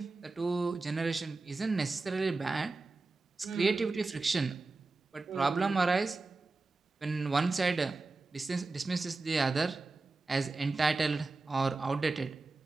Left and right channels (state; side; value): quieter; left; 3.5 dB